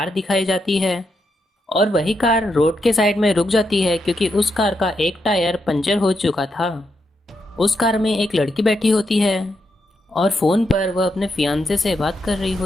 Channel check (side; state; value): both; normal; correlation 0.82